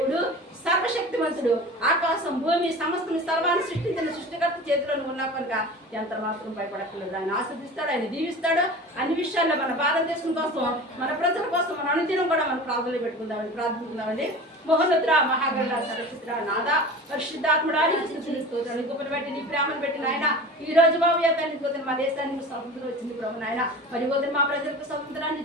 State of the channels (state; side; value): normal; both; correlation 0.35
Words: సర్వశక్తివంతుడు. ఆకాశం భూమి సమస్తం సర్వాన్ని సృష్టించిన సృష్టికర్త చేతిలో ఉన్నా కనుక ఎంత మాత్రం భయపడక్కర్లేదు. ఆయన ఆస్వాదిస్తాడు, ఆయన దీవిస్తాడు. అన్ని విషయాల్లో మన భారతదేశం కోసం, మన ప్రజల కోసం మన అనుదినం కూడా మనం ప్రార్థనలు పెట్టుకుందామని ప్రార్థించుకుందామండి. మహోన్నతుడా, మహాగరుడా, సర్వశక్తుడా, నాదా పరిశుద్ధాత్ముడా, స్తోత్రాలు గొప్పలు పెట్టి నీ ప్రేమను పెట్టి నాయన ఈ రోజు బాబు తండ్రి మా దేశానికి స్వతంత్రం వచ్చింది ప్రభు నాయన. మరి పోతే మా ప్రజలకు స్వతంత్రాన్ని